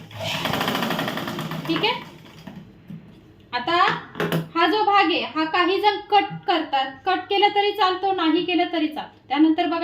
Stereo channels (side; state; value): both; identical; correlation 1.00